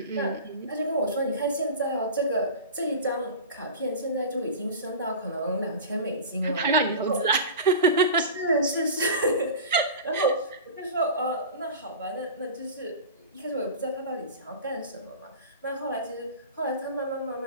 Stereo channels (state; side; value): inverted; both; correlation -0.33